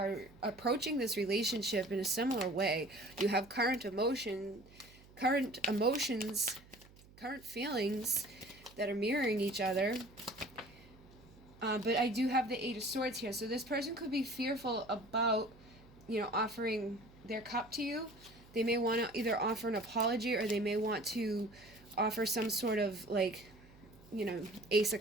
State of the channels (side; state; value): right; noise; hum, 23 dB below the sound